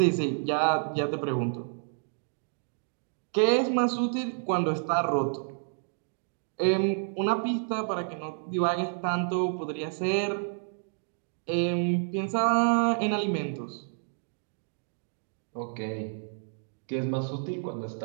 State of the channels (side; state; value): left; silent; digital silence